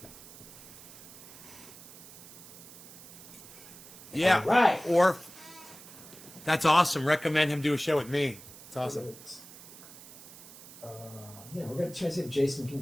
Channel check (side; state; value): right; noise; hiss, 17 dB below the sound